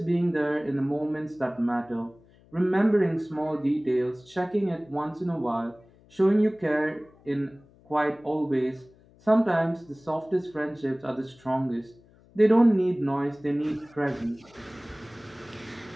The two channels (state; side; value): noise; left; hum, 28 dB below the sound